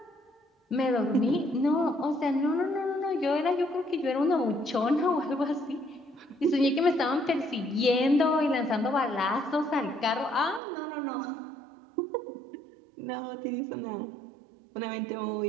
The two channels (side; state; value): left; drops out; at 10.6 s